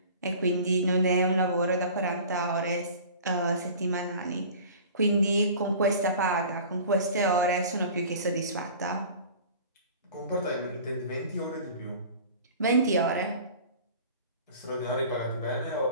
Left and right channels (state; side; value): inverted; both; correlation -0.42